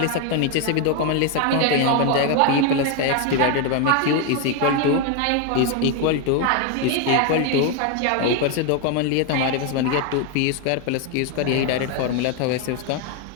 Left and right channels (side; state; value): both; different; correlation 0.01